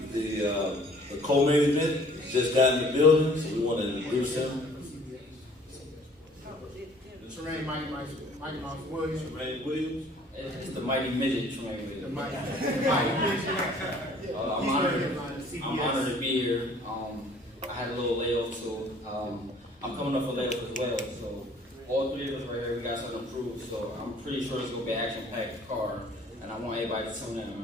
co-main event just got in the building, so we want to introduce him. Terrain Mighty Mouse Williams. Terrain Williams. It's the Mighty Midget Terrain. The Mighty Midget. I'm honored to be here. I had a little layoff, so I'm coming up for layoff as well. So all three of us right here, we got something to prove. So I'm pretty sure it's gonna be an action-packed card, and I want everybody to tune in,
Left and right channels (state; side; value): normal; both; correlation 0.55